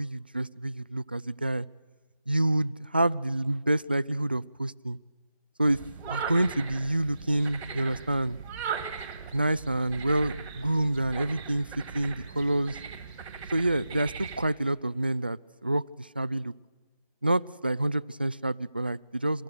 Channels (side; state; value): both; inverted; correlation -0.91